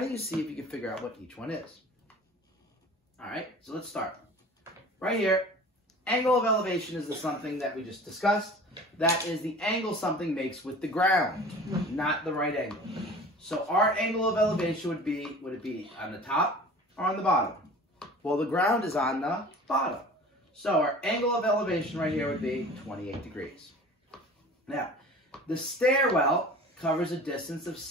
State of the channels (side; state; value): both; normal; correlation 0.42